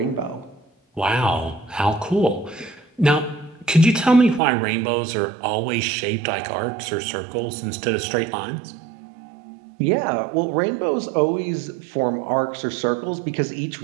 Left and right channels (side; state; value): left; drops out; at 4.4 s